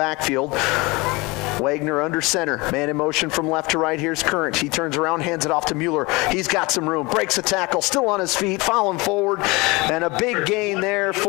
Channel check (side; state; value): right; quieter; 24.4 dB